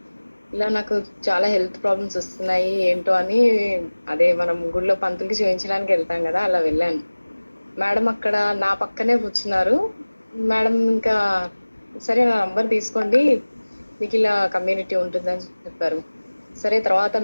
ఇలా నాకు చాలా హెల్త్ ప్రాబ్లమ్స్ వస్తున్నాయి ఏంటో అని అదే మనం గుడిలో పంతులకి చూయించడానికి వెళ్తాం గదా! అలా వెళ్ళాను. మేడం అక్కడ నా పక్కనే కూర్చున్నారు. మేడం ఇంకా సరే నా నంబర్ తీసుకోండి. మీకిలా కమ్యూనిటీ ఉంటుందని చెప్పారు. సరే తర్వాత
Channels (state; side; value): inverted; both; correlation -1.00